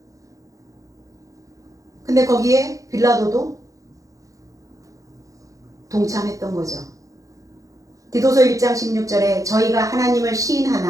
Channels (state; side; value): late; left; 0.16 ms